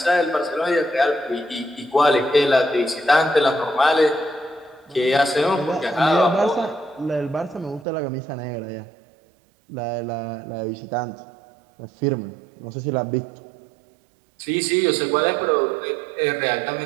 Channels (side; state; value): left; drops out; at 7.9 s